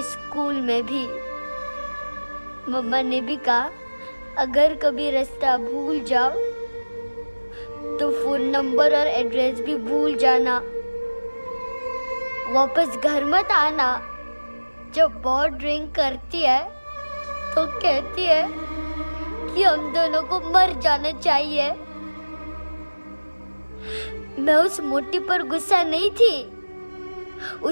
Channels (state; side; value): inverted; both; correlation -1.00